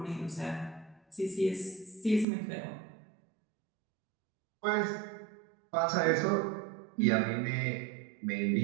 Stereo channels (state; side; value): drops out; left; at 2.2 s